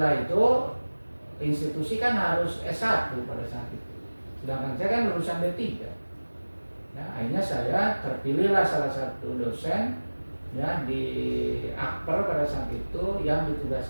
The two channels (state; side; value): inverted; both; correlation -1.00